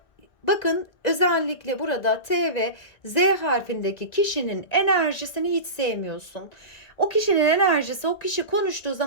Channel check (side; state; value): right; late; 1.9 ms